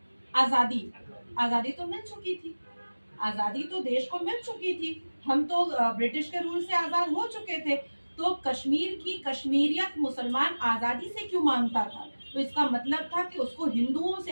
आजादी। आजादी तो मिल चुकी थी, आजादी तो देश को मिल चुकी थी, हम तो ब्रिटिश के रूल से आजाद हो चुके थे। तो कश्मीर की कश्मीरियत मुसलमान आजादी से क्यों मांगता था? तो इसका मतलब था कि उसको हिंदुओं से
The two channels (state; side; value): inverted; both; correlation -1.00